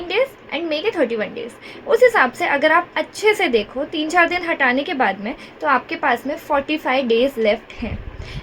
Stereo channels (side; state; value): both; identical; correlation 1.00